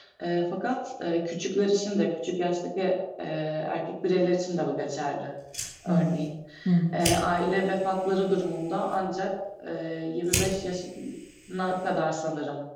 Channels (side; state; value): both; identical; correlation 1.00